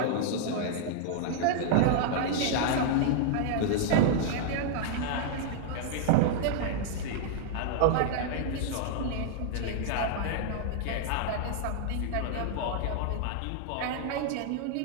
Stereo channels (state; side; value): different; both; correlation -0.01